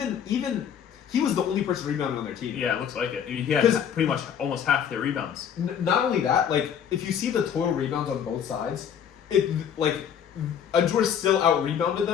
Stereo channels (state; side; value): quieter; right; 8.4 dB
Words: he was the only person rebounding on their team. Yeah, it looks like it. He had 'Cause- pretty much almost half their rebounds. Not only that, like if you see the total rebounds on both sides, it like Ajjur still out rebounded